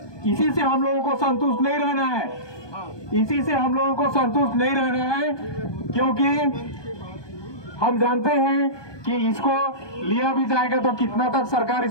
इसी से हम लोगों को संतुष्ट नहीं रहना है, इसी से हम लोगों को संतुष्ट नहीं रहना है, क्योंकि हम जानते हैं कि इसको लिया भी जाएगा तो कितना तक सरकार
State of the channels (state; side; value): late; right; 1.2 ms